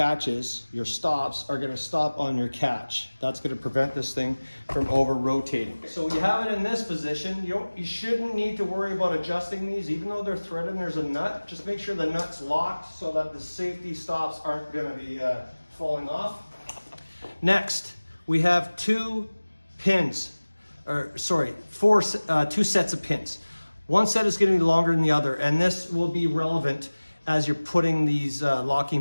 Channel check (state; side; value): inverted; both; correlation -1.00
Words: your stops are going to stop on your catch. That's going to prevent this thing from over rotating. So you have it in this position. You shouldn't need to worry about adjusting these, even though they're threaded and there's a nut. Just make sure the nut's locked so that the safety stops aren't going to be falling off. Next, we have two sets of pins. One set is going to be longer than the other, and this will be relevant as you're putting these